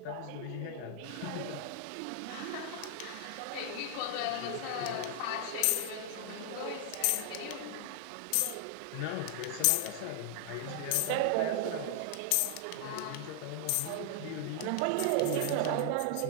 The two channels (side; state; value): both; different; correlation 0.00